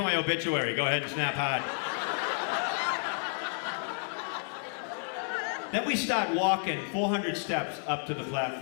my obituary. Go ahead and snap hard. Then we start walking 400 steps up to the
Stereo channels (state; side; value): silent; right; 57 dB below the other